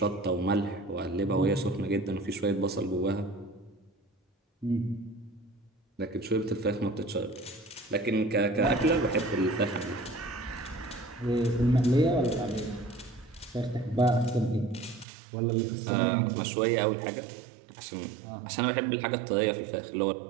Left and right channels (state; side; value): drops out; left; at 15.1 s